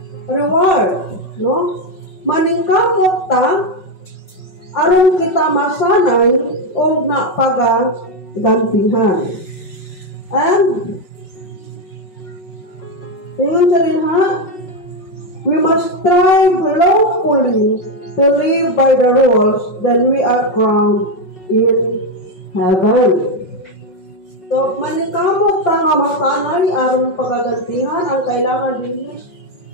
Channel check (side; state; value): right; late; 5.4 ms